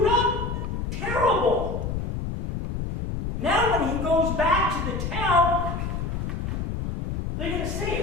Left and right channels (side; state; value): left; noise; rumble, 3 dB below the sound